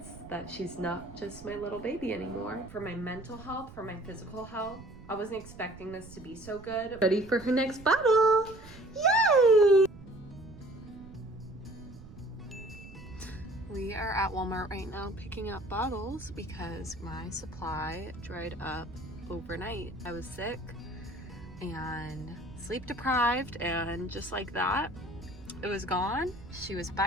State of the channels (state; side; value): noise; right; rumble, 17 dB below the sound